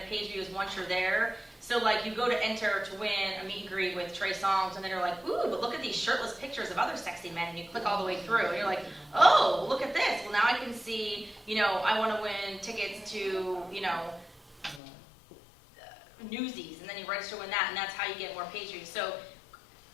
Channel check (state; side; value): drops out; right; at 14.8 s